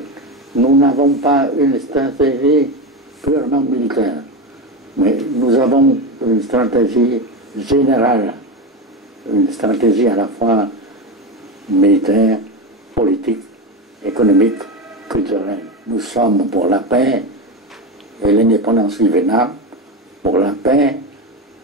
nous n'avons pas une stratégie purement militaire, mais nous avons une stratégie générale, une stratégie à la fois militaire, politique, économique, culturelle. Nous sommes pour la paix et l'indépendance du Vietnam, pour la paix,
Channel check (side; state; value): both; normal; correlation 0.17